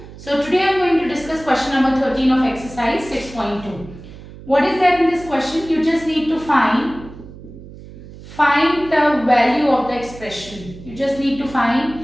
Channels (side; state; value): right; noise; hum, 16 dB below the sound